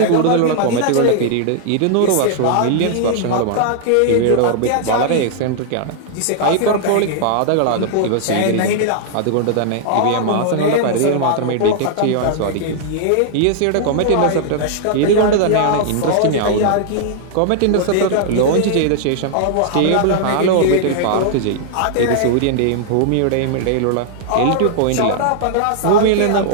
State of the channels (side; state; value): both; different; correlation -0.01